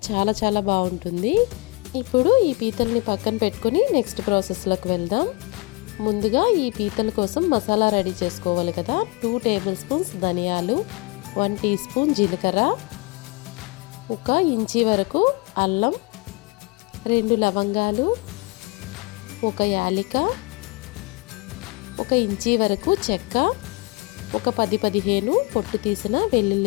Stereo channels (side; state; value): right; quieter; 25.9 dB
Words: చాలా బాగుంటుంది. ఇప్పుడు ఈ పీతల్ని పక్కన పెట్టుకొని నెక్స్ట్ ప్రాసెస్లోకి వెళ్దాం. ముందుగా ఈ పీతల కోసం మసాలా రెడీ చేసుకోవాలి కదా. 2 టేబుల్ స్పూన్స్ ధనియాలు, 1 టీ స్పూన్ జీలకర్ర, 1 ఇంచి వరకు అల్లం, 2 లవంగాలు, 1 యాలిక, 1 ఇంచి వరకు చెక్క, 10-15 పొట్టు తీసిన